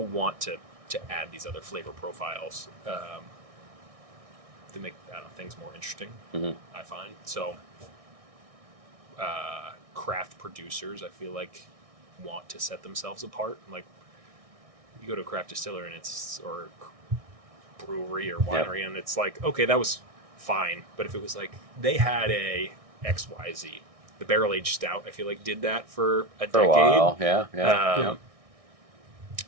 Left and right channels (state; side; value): late; left; 1.6 ms